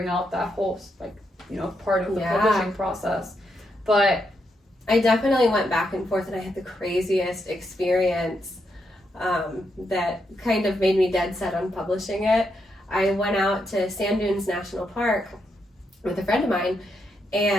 out that whole, like, you know, part of the publishing process. But I definitely went back and forth and I had the craziest experience that kind of made me dead set on publishing it. I went out to Sand Dunes National Park with a friend of mine,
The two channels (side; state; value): both; normal; correlation 0.81